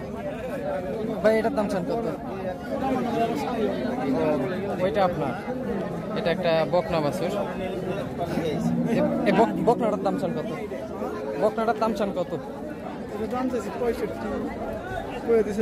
ভাই এটার দাম চান কত? ওইটা আপনার, এটা একটা বকনা বাছুর। বকনাটার দাম চান কত? বকনাটার দাম চান কত? দাম চাইছি 65, করে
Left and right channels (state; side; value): identical; both; correlation 1.00